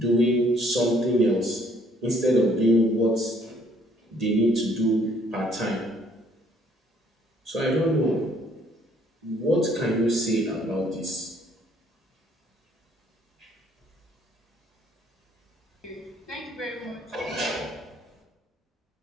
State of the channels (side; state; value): both; normal; correlation 0.63